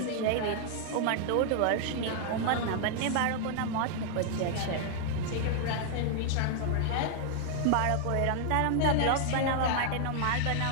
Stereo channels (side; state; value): both; different; correlation 0.00